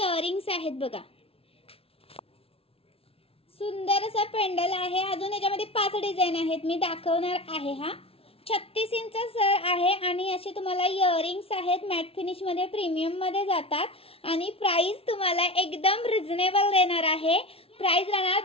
आहेत बघा। सुंदर असा पेंडल आहे। अजून याच्यामध्ये 5 डिझाइन आहेत मी दाखवणार आहे। हा 36 इंच सर आहे आणि असे तुम्हाला इयरिंग्स आहेत। मॅट फिनिश मध्ये प्रीमियम मध्ये जातात आणि प्राइस तुम्हाला एकदम रिजनेबल देणार आहे। प्राइस राहणार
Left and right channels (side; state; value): right; late; 0.27 ms